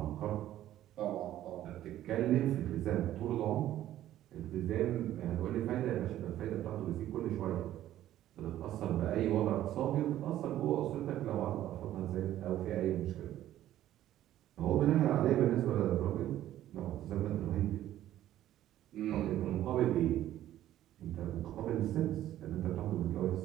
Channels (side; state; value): left; quieter; 12.9 dB